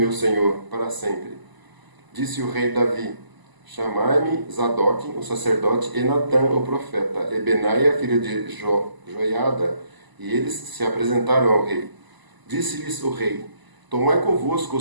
senhor, para sempre. Disse o rei Davi: Chamai-me Zadok, o sacerdote, e Natã, o profeta, e Benaia, filho de Joiada. E eles se apresentaram ao rei. Disse-lhes o rei: Tomai convosco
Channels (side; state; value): left; late; 1.0 ms